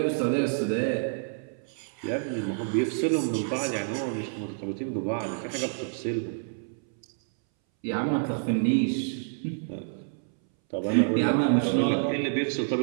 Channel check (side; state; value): left; silent; 59 dB below the other